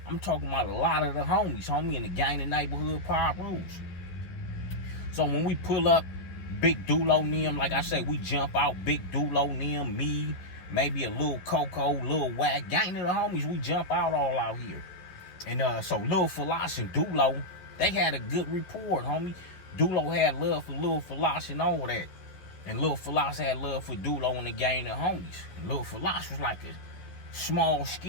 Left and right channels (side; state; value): right; late; 11 ms